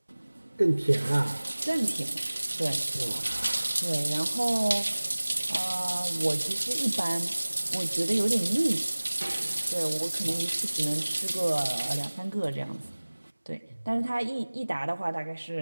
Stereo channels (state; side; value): inverted; both; correlation -1.00